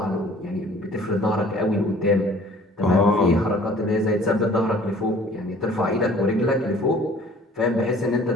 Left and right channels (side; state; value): both; normal; correlation 0.52